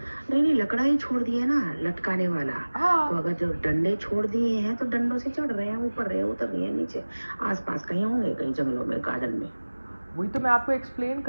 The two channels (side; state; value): both; inverted; correlation -1.00